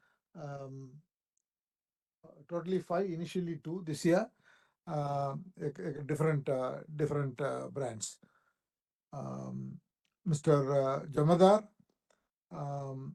Totally 5, initially 2 this year. Different brands. Mr. Jamadar,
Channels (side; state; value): both; identical; correlation 1.00